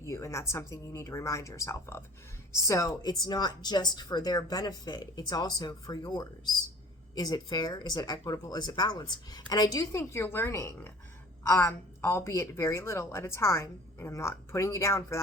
And that's something you need to remind yourself of. So it's not just for their benefit, it's also for yours. Is it fair? Is it equitable? Is it balanced? And I do think you're learning, albeit very little at a time, and I'm not putting you down for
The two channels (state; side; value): normal; both; correlation 0.47